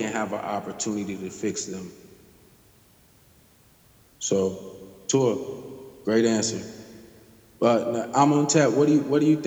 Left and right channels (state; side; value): identical; both; correlation 1.00